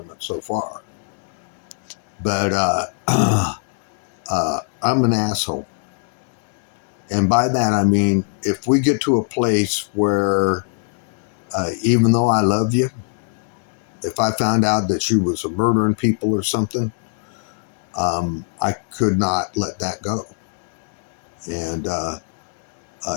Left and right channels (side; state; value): right; silent; 65 dB below the other